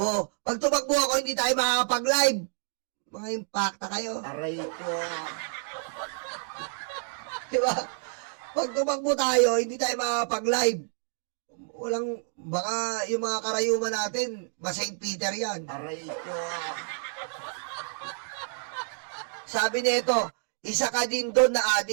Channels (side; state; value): left; silent; 59 dB below the other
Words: Pag tumakbo ako, hindi tayo makakapag-live. Mga impacta kayo. Aray ko. Diba? Pag tumakbo tayo, hindi tayo makakapag-live. Walang, baka yung mga karayuman natin, St. Peter yan. Aray ko. Sabi nito, isa ka din doon na